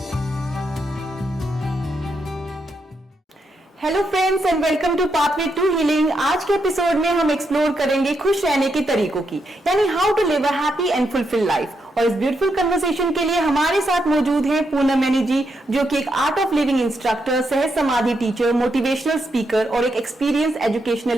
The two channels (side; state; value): both; normal; correlation 0.81